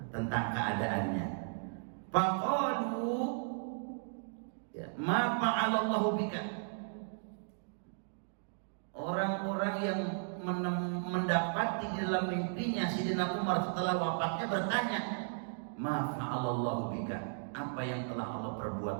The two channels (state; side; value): silent; left; digital silence